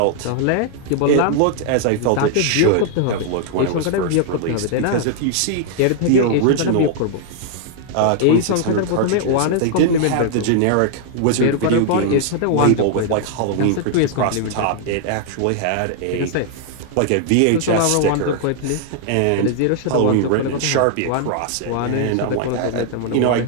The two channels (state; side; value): different; both; correlation 0.00